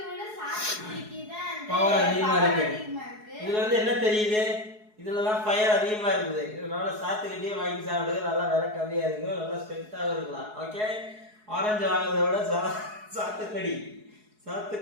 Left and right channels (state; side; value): late; left; 4.7 ms